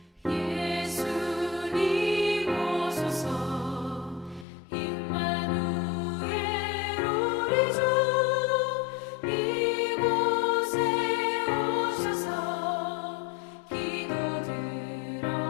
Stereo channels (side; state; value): right; drops out; at 4.5 s